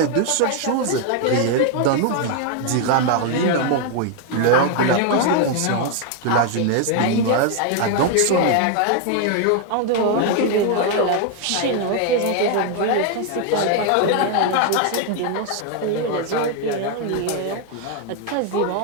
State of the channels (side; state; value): both; different; correlation 0.01